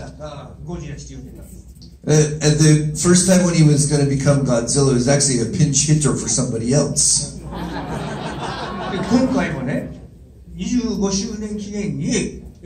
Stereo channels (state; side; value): identical; both; correlation 1.00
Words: ったゴジラして言ってたんです。At the first time when he was going to become Godzilla, he was actually a pinch hitter for somebody else. で今回もね、25周年記念に